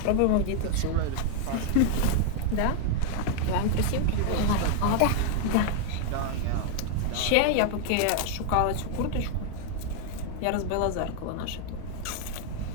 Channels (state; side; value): different; both; correlation 0.00